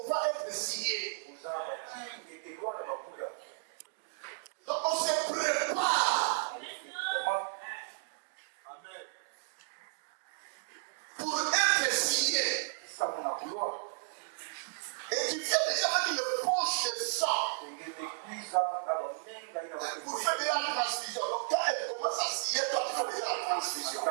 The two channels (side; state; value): left; silent; digital silence